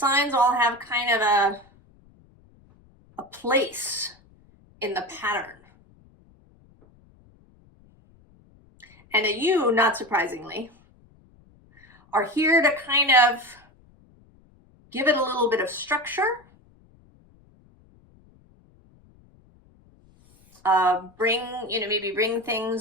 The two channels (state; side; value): noise; left; rumble, 30 dB below the sound